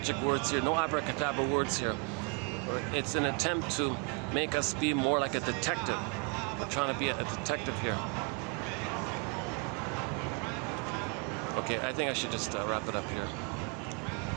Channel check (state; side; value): quieter; left; 33.3 dB